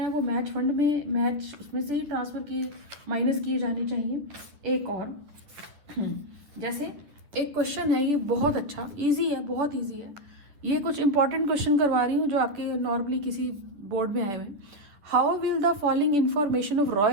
वो मैच फंड में उसमें से ही ट्रांसफर किए माइनस किए जाने चाहिए। एक और जैसे एक क्वेश्चन है, ये बहुत अच्छा इजी है, बहुत इजी है। ये कुछ इंपॉर्टेंट क्वेश्चन करवा रही हूँ जो आपके नॉर्मली किसी बोर्ड में आए हुए। How will the following information of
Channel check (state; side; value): late; left; 9.7 ms